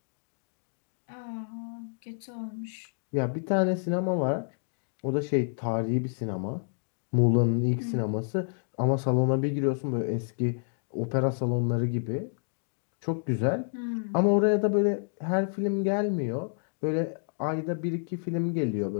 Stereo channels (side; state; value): right; silent; digital silence